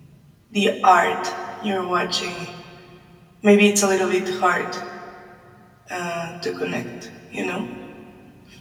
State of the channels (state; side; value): identical; both; correlation 1.00